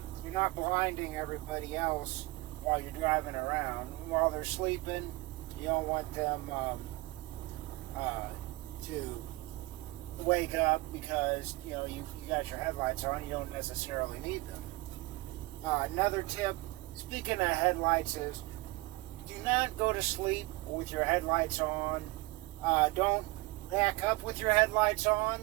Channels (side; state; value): left; quieter; 21.5 dB